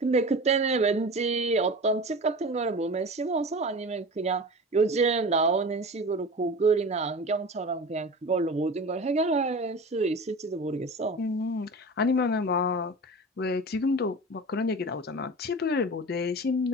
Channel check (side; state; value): both; normal; correlation 0.34